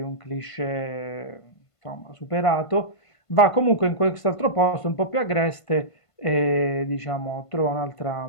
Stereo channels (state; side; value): late; right; 1.5 ms